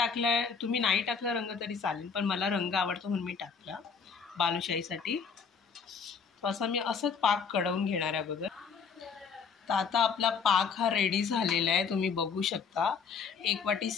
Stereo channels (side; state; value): right; quieter; 5.8 dB